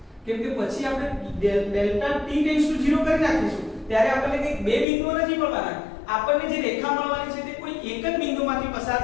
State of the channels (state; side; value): drops out; right; at 4.9 s